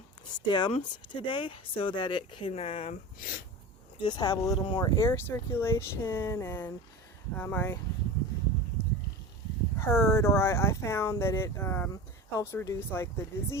stems today so that it can just have a little more air circulation. And I heard, or I found that it helps reduce like the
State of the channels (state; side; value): normal; both; correlation 0.31